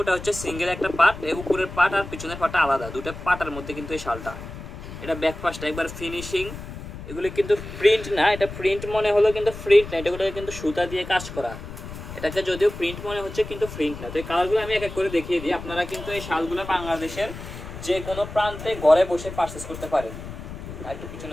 হচ্ছে সিঙ্গেল একটা পার্ট, এই উপরের পার্ট আর পিছনের পার্টটা আলাদা, দুটো পার্টের মধ্যে কিন্তু এই শালটা। এটা ব্যাক পাশটা একবার ফিনিশিং। এগুলো কিন্তু প্রিন্ট না, এটা প্রিন্ট মনে হলো কিন্তু প্রিন্ট না, এটাগুলো কিন্তু সুতা দিয়ে কাজ করা। এটাকে যদিও প্রিন্ট মনে হচ্ছে কিন্তু প্রিন্ট না। তো এই কালারগুলো আমি এক এক করে দেখিয়ে দিই। আপনারা কিন্তু এই শালগুলো বাংলাদেশের যে কোনো প্রান্তে ঘরে বসে পারচেস করতে পারেন। আর একটু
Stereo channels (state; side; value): noise; left; rumble, 11 dB below the sound